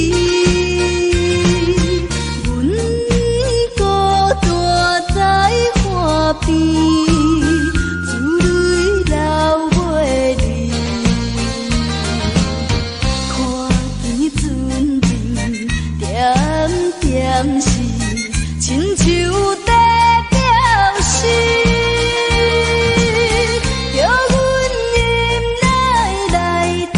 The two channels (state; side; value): identical; both; correlation 1.00